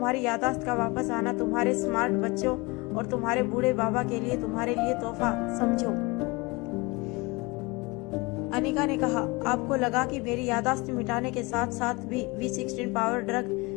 याददाश्त का वापस आना तुम्हारे स्मार्ट बच्चों और तुम्हारे बूढ़े बाबा के लिए तुम्हारे लिए तोहफा समझो। अनिका ने कहा, आपको लगा कि मेरी याददाश्त मिटाने के साथ साथ भी V16 पावर ड्रग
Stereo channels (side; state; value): right; quieter; 25.4 dB